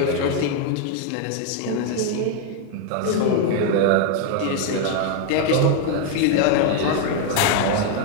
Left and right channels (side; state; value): both; different; correlation 0.00